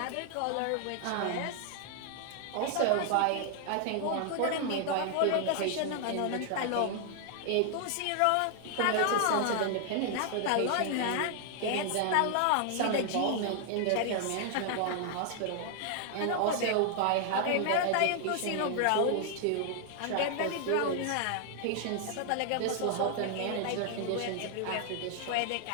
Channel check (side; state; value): both; different; correlation 0.00